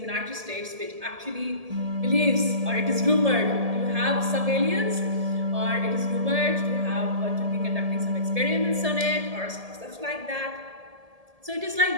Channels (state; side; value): late; left; 1.7 ms